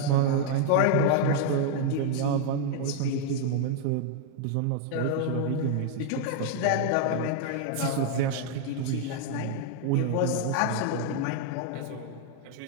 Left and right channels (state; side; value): different; both; correlation 0.00